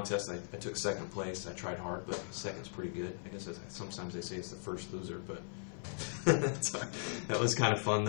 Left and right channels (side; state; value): right; silent; 52 dB below the other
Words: I took second place. I tried hard, but second's pretty good. I guess sometimes they say it's the first loser, but that was kind of fun